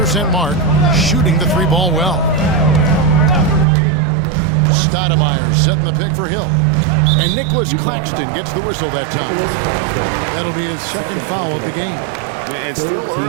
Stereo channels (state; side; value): drops out; left; at 3.7 s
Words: mark, shooting the 3-ball well. Stoudemire setting the pick for Hill. And Nicholas Claxton gets the whistle that time. That'll be his second foul of the game. And still